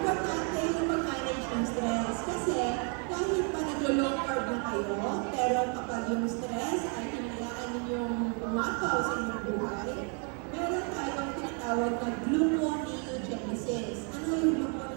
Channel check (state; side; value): quieter; left; 38.9 dB